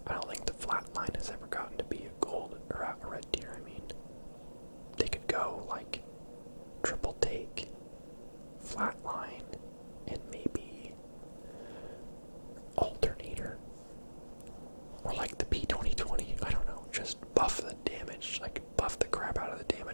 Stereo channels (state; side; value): inverted; both; correlation -1.00